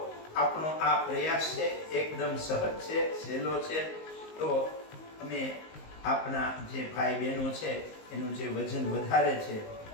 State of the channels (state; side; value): late; right; 19 ms